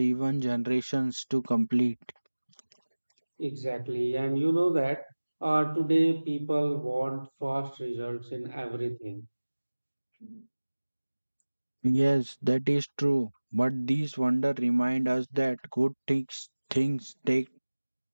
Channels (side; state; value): both; inverted; correlation -1.00